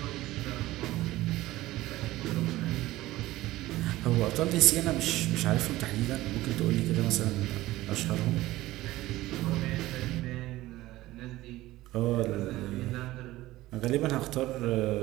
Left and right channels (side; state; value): left; quieter; 17.1 dB